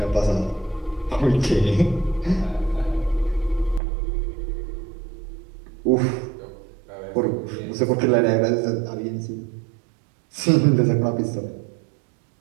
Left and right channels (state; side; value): drops out; left; at 3.8 s